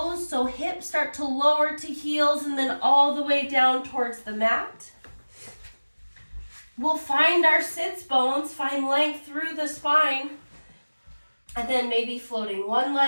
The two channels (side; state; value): both; inverted; correlation -1.00